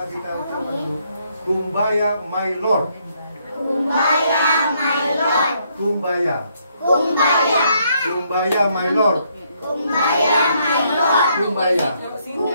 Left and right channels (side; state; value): both; inverted; correlation -0.72